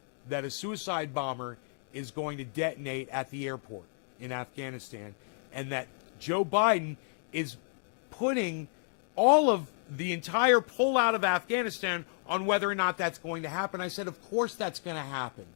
that a suicide bomber is going to detonate at the airport in Afghanistan, and that Joe Biden is putting all of the entire pullout of Afghanistan on whether or not that's going to happen. I said, of course that's going to happen.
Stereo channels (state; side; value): silent; right; digital silence